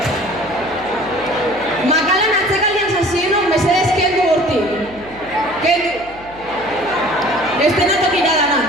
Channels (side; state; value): right; noise; hum, 21 dB below the sound